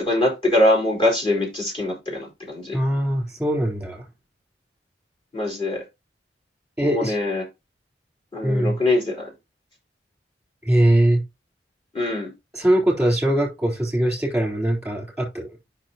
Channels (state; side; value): normal; both; correlation 0.79